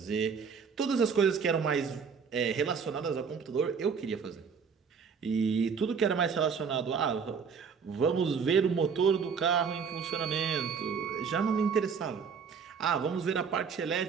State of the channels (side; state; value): left; quieter; 6.1 dB